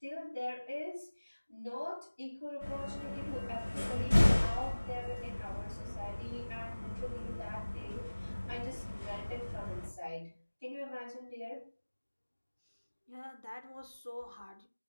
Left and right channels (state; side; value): inverted; both; correlation -1.00